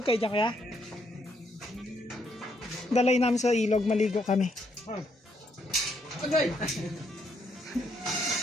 kayo dyan kaya? Dalay namin sa ilog, maligo kami. Agay!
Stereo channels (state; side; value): normal; both; correlation 0.74